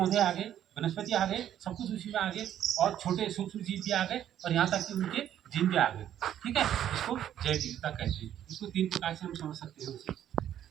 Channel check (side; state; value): left; quieter; 10.8 dB